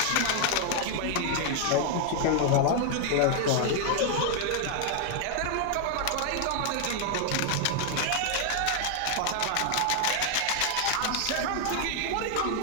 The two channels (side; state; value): both; different; correlation 0.00